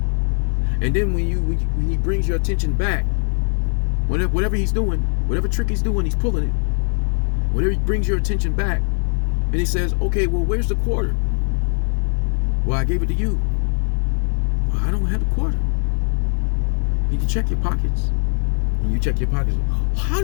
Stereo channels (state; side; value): silent; right; digital silence